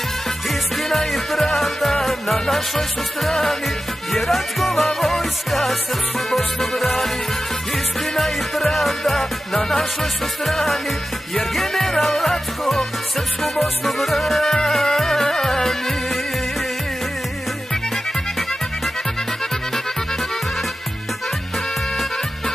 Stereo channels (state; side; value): normal; both; correlation 0.94